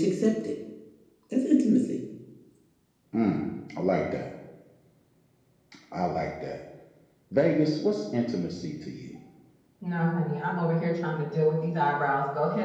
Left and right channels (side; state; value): both; identical; correlation 1.00